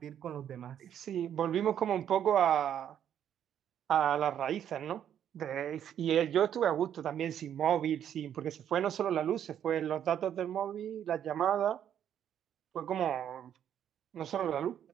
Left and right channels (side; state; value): left; quieter; 9.7 dB